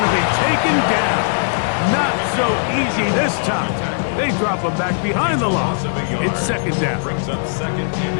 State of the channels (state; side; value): silent; right; 67 dB below the other